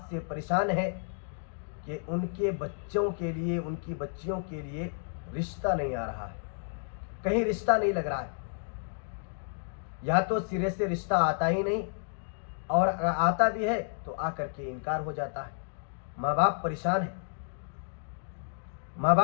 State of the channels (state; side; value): silent; right; digital silence